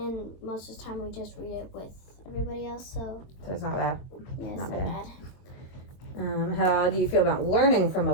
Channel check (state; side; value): late; right; 22 ms